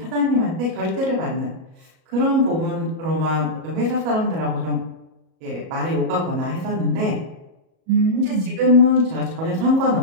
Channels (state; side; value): late; left; 37 ms